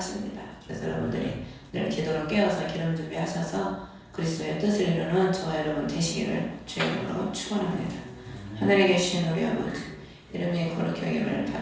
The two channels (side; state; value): both; identical; correlation 1.00